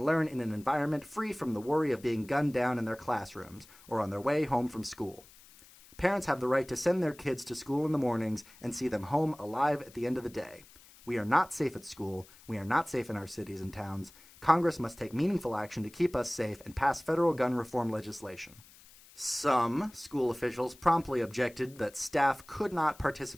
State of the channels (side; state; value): left; noise; hiss, 23 dB below the sound